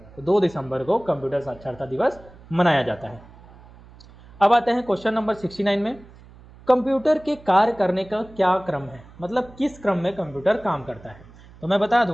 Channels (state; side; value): noise; right; hum, 22 dB below the sound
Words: तो 2 दिसंबर को कंप्यूटर साक्षरता दिवस मनाया जाता है। अब आते हैं क्वेश्चन नंबर 69 में। कंप्यूटर के कार्य करने का क्या क्रम है? मतलब किस क्रम में कंप्यूटर काम करता है? तो मैं बता